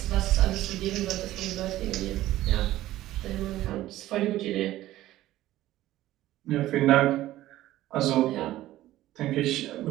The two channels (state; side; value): quieter; left; 15.0 dB